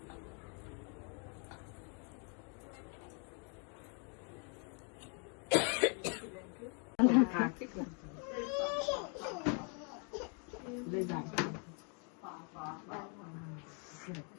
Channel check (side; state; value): right; quieter; 38.6 dB